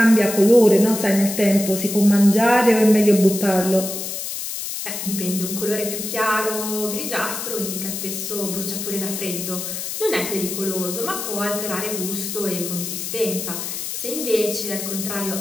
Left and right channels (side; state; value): left; noise; hiss, 5 dB below the sound